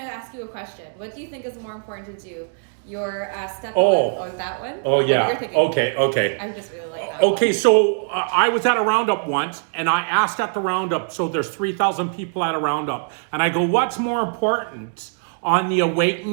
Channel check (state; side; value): silent; left; digital silence